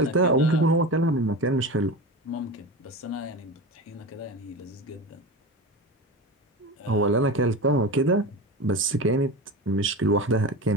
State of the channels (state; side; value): normal; both; correlation 0.27